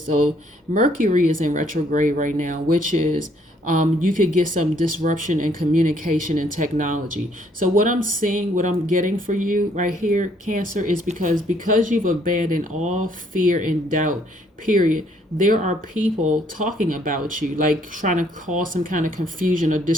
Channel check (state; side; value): normal; both; correlation 0.66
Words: So Mercury is in retrograde right now, which is you could get some disruption in communication and technology. So what I'm seeing, what I'm getting for you right here, Cancer, is because you've abandoned all fear and doubt, period. There are people talking about you, like trying to cause some kind of confusion or